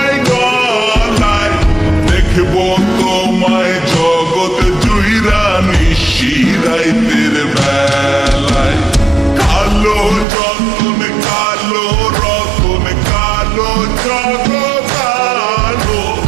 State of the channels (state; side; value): drops out; left; at 10.2 s